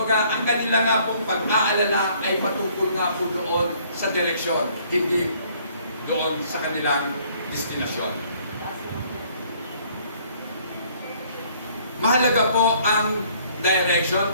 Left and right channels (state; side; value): inverted; both; correlation -0.60